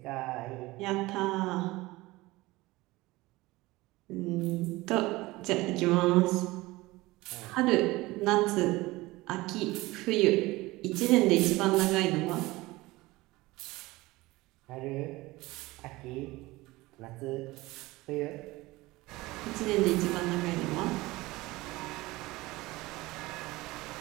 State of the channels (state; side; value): quieter; left; 20.2 dB